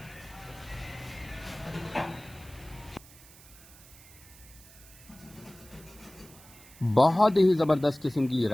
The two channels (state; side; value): noise; right; hiss, 21 dB below the sound